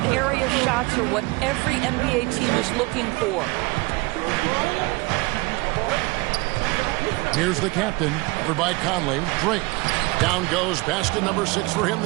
area shots are what every NBA team is looking for. Here's the captain, covered by Conley. Drake. Down goes basket number 6 for him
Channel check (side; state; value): left; quieter; 24.9 dB